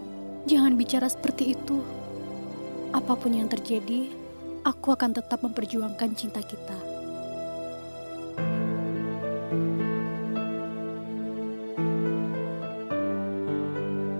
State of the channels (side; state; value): both; inverted; correlation -1.00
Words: Jangan bicara seperti itu. Apapun yang terjadi, aku akan tetap memperjuangkan cinta kita.